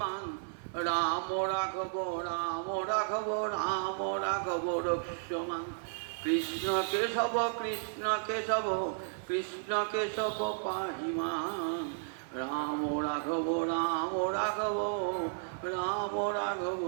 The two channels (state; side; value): silent; left; 56 dB below the other